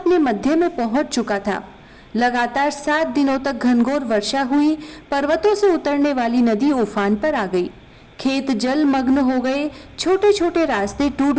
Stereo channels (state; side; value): identical; both; correlation 1.00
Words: मध्य में पहुंच चुका था। लगातार 7 दिनों तक घनघोर वर्षा हुई। पर्वतों से उतरने वाली नदी उफान पर आ गई। खेत जलमग्न हो गए, छोटे छोटे रास्ते